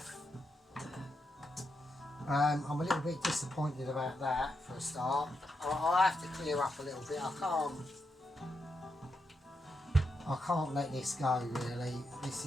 I'm a little bit disappointed about that for a start. I have to clear up a little bit. I can't let this go, really. This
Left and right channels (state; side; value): normal; both; correlation 0.84